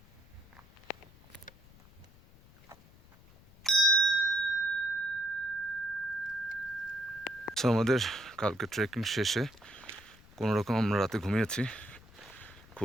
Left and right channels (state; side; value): noise; left; rumble, 24 dB below the sound